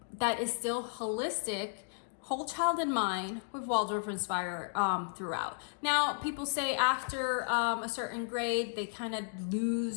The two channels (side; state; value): right; silent; digital silence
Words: that is still holistic, whole child in mind, with Waldorf inspired throughout. Now, people say after a certain grade, they kind of